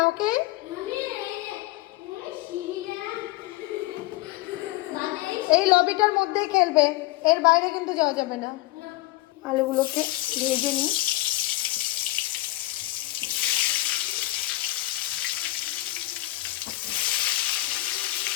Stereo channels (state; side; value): quieter; right; 18.9 dB